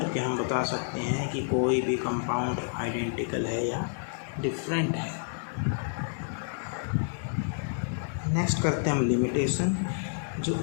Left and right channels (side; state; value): right; silent; digital silence